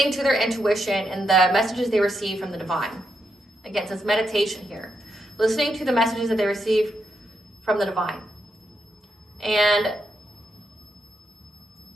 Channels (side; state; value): both; normal; correlation 0.82